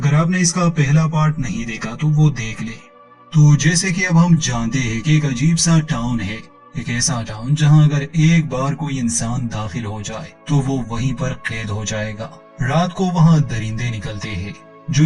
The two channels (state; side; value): identical; both; correlation 1.00